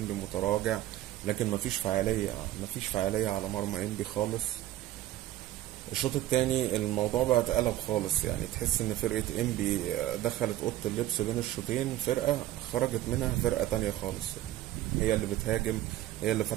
متراجع، لكن مفيش فعالية على مرمى إنبي خالص. الشوط التاني الموضوع بقى اتقلب خالص، يعني تحس ان فرقة إنبي دخلت أوضة اللبس بين الشوطين، فرقة خرجت منها فرقة تانية خالص. هي اللي بتهاجم، هي اللي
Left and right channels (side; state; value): left; quieter; 14.3 dB